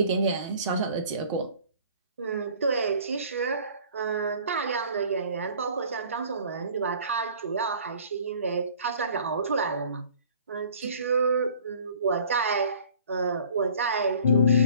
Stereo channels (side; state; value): both; inverted; correlation -0.51